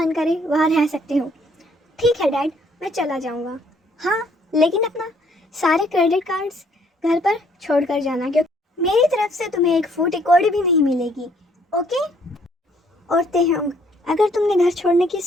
करे वहाँ रह सकते हो। ठीक है डैड, मैं चला जाऊँगा। हाँ, लेकिन अपना सारे क्रेडिट कार्ड्स घर पर छोड़ कर जाना, क्योंकि मेरी तरफ से तुम्हें एक फूटी कौड़ी भी नहीं मिलेगी। ओके? और तेहंग, अगर तुमने घर छोड़ने की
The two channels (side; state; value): both; normal; correlation 0.64